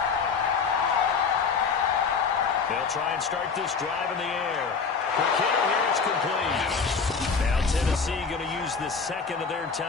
They'll try and start this drive in the air. Quick hitter here, it's complete. Now Tennessee going to use the second of their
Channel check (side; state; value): right; quieter; 5.3 dB